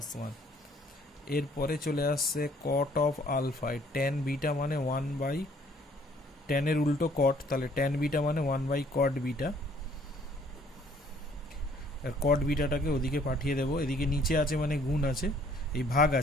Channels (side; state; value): both; normal; correlation 0.60